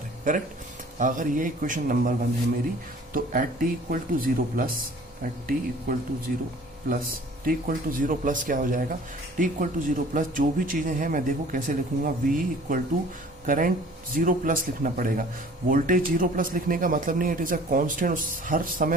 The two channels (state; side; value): normal; both; correlation 0.50